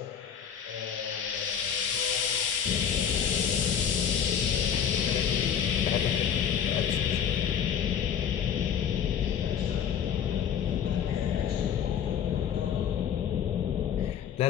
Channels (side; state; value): right; quieter; 8.3 dB